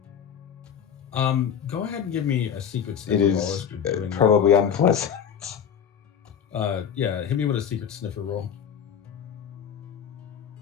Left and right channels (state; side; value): quieter; right; 8.1 dB